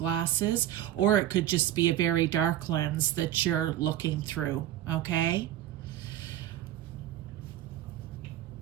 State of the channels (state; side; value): quieter; left; 12.8 dB